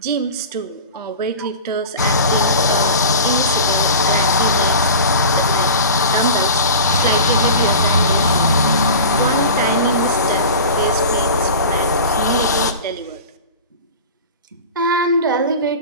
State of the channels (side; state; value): both; inverted; correlation -0.33